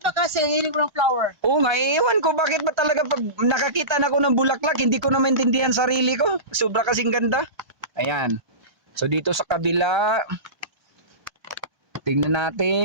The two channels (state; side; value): late; left; 1.2 ms